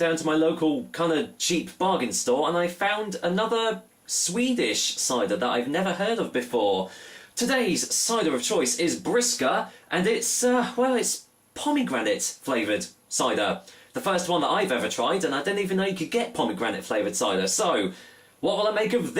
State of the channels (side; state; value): both; identical; correlation 1.00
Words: to my local kind of cheap bargain store, and I found another Swedish cider that I've never heard of before. Today's cider of choice is Briska, and it's pomegranate flavoured cider. The first one that I've ever tried, and I didn't even know you could get pomegranate flavoured cider. So, what will I make of